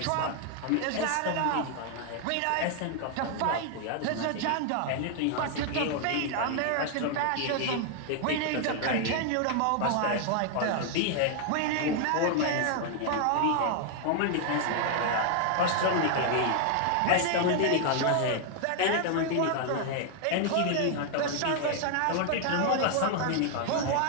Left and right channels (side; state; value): both; different; correlation 0.00